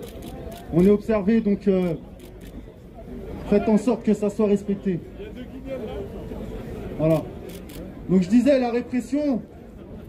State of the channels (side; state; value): both; identical; correlation 1.00